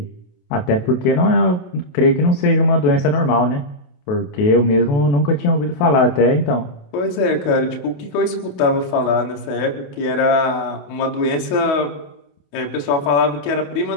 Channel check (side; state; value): right; late; 28 ms